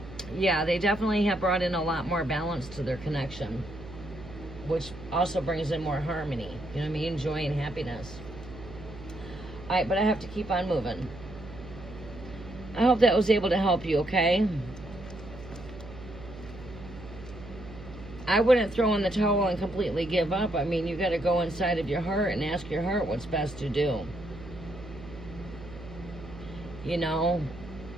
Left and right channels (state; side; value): noise; right; hum, 15 dB below the sound